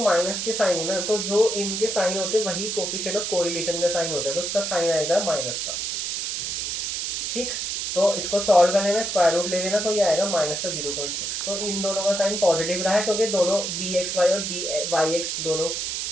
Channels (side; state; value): right; noise; hiss, 2 dB below the sound